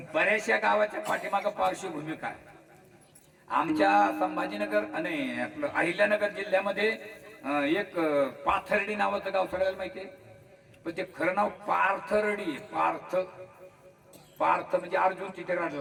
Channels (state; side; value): identical; both; correlation 1.00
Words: बऱ्याचशा गावाच्या पाठीमागं पार्श्वभूमी काय आमच्या संभाजीनगर आणि आपलं अहिल्यानगर जिल्ह्यामध्ये एक पाथर्डी नावाचं गाव सगळ्याला माहितीये पण ते खरं नाव पार्थर्डी पार्थ पार्थ म्हणजे अर्जुन तिथे